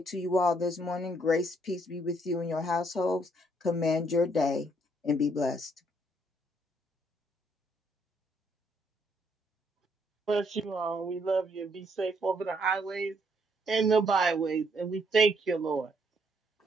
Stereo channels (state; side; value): normal; both; correlation 0.70